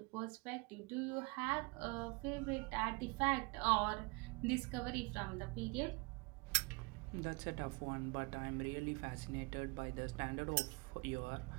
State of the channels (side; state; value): left; quieter; 28.2 dB